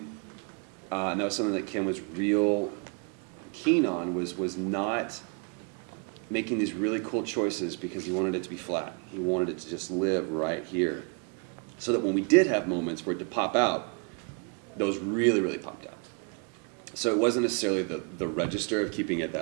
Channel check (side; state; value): left; quieter; 37.1 dB